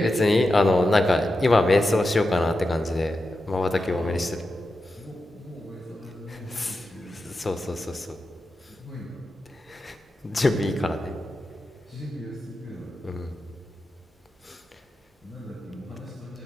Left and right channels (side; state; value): both; normal; correlation 0.90